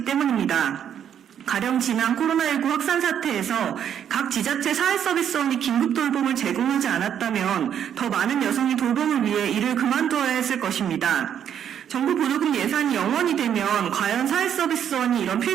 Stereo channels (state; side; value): quieter; left; 9.1 dB